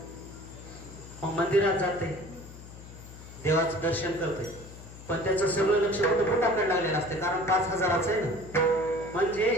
मग मंदिरात जाते, देवाचं दर्शन करते, पण त्याचं सगळं लक्ष फक्त बुटाकडे लागलेलं असते, कारण 5,000चं आहे ना. म्हणजे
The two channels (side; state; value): left; noise; hum, 16 dB below the sound